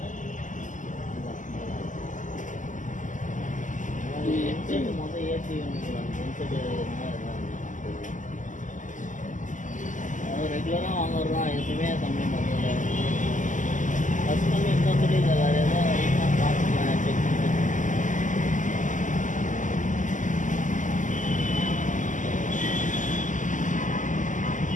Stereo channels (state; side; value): late; right; 0.37 ms